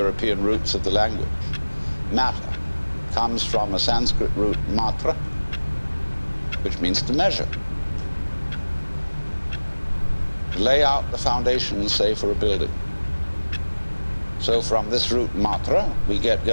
roots of the language. Matter comes from a Sanskrit root matra, which means to measure. To lay out the foundations, say, for a building. So from this root matra, we get,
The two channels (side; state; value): both; inverted; correlation -1.00